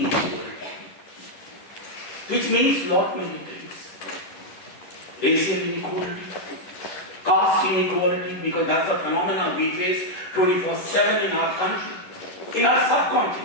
which means lot many things. Racial inequality, caste inequality, because that's a phenomenon we face 24/7 in our country, in our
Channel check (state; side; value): late; right; 10 ms